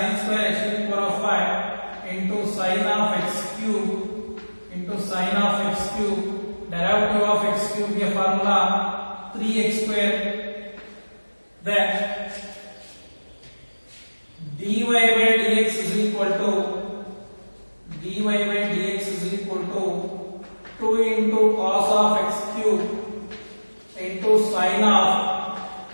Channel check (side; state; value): both; inverted; correlation -1.00